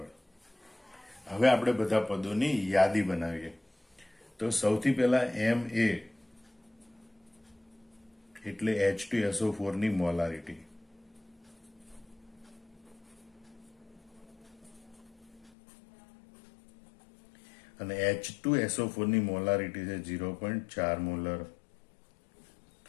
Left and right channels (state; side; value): drops out; right; at 15.5 s